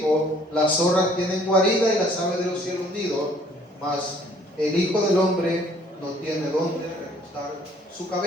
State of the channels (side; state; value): both; normal; correlation 0.58